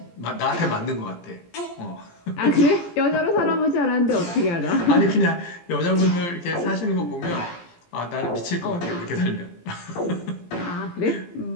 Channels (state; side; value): late; right; 17 ms